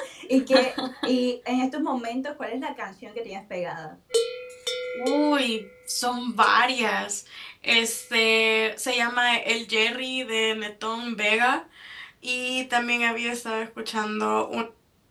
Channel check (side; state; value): both; identical; correlation 1.00